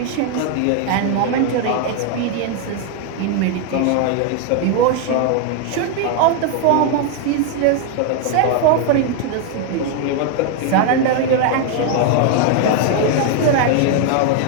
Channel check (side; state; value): both; different; correlation 0.00